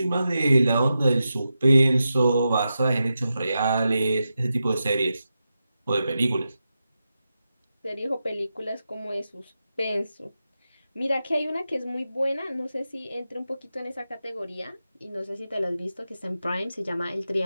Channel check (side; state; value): both; inverted; correlation -0.90